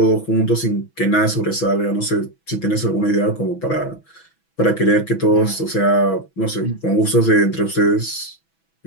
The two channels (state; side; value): late; right; 6.1 ms